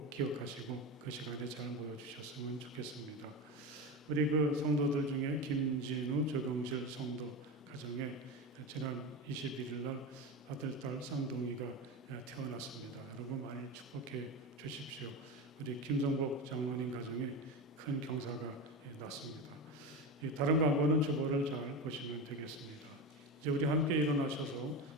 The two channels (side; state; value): both; normal; correlation 0.22